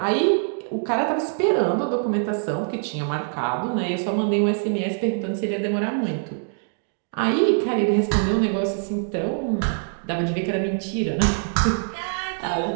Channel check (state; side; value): silent; left; digital silence